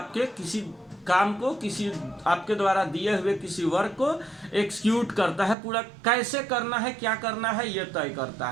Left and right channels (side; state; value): left; drops out; at 5.6 s